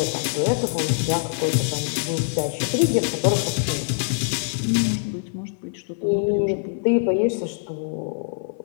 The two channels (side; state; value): right; silent; 63 dB below the other